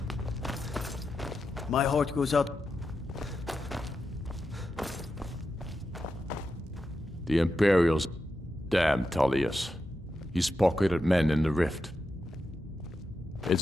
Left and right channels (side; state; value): both; normal; correlation 0.88